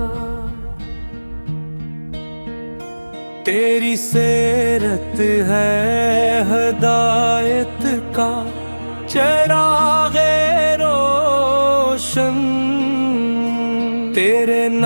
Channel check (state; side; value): inverted; both; correlation -1.00